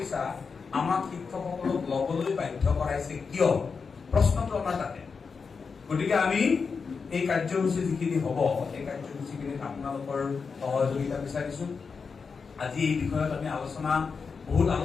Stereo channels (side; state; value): right; quieter; 5.3 dB